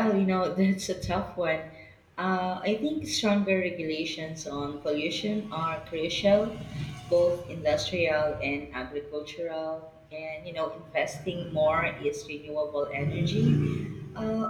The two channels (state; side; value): identical; both; correlation 1.00